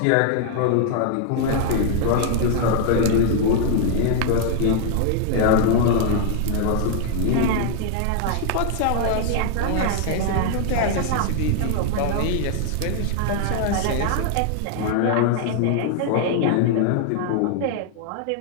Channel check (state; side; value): different; both; correlation 0.00